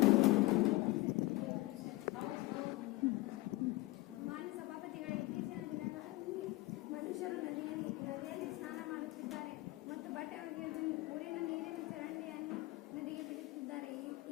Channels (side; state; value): right; quieter; 21.2 dB